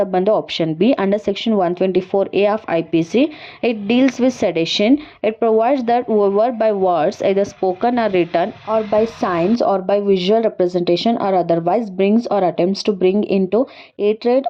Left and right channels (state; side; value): identical; both; correlation 1.00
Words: ಬಂದು option B under section 124A of IPC. It deals with sedition. It provides that whoever by words either spoken or written or by signs or by visual representation or otherwise brings or attempts to bring into hatred